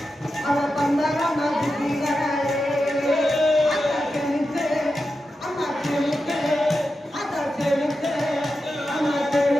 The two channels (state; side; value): normal; both; correlation 0.90